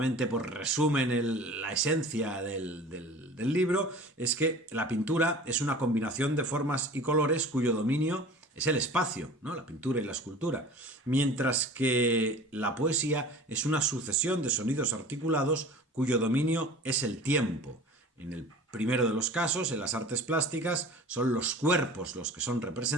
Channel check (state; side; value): normal; both; correlation 0.41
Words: pues, resumen la esencia del libro, es que la pintura es una combinación de formas y colores cuyo dominio es el espacio, ¿no? La pintura y la escultura. Mientras que la poesía es una sucesión de sonidos articulados cuyo dominio es el tiempo. En el primero de los casos, en las artes plásticas, son los cuerpos los que son